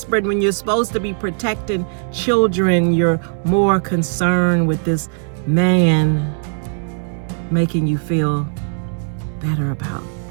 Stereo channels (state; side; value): silent; left; 60 dB below the other